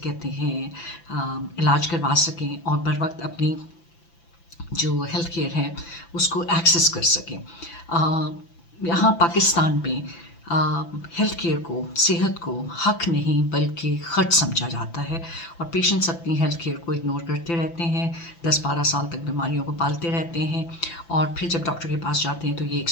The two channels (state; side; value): late; right; 5.9 ms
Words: हैं इलाज करवा सकें और बर वक्त अपनी जो हेल्थ केयर है उसको एक्सेस कर सकें। यहाँ पाकिस्तान में हेल्थ केयर को, सेहत को हक नहीं बल्कि ख़र्च समझा जाता है और पेशेंट्स अपनी हेल्थ केयर को इग्नोर करते रहते हैं, 10-12 साल तक बीमारियों को पालते रहते हैं और फिर जब डॉक्टर के पास जाते हैं तो ये